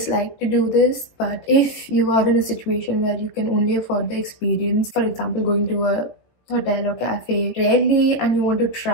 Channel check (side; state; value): right; late; 18 ms